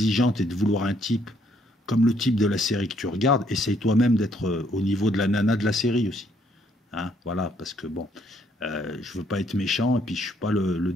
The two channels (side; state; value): both; normal; correlation 0.68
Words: et de vouloir un type comme le type de la série que tu regardes, essaye toi-même d'être au niveau de la nana de la série aussi. Hein, voilà, parce que bon, je veux pas être méchant, et puis je suis pas le